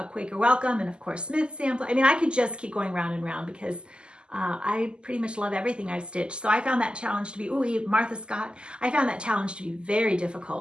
Quaker Welcome, and of course Smith sample. I mean, I could just keep going round and round because I pretty much love everything I've stitched. So I found that challenge to be, Martha Scott, I found that challenge to be very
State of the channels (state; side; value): late; left; 0.049 ms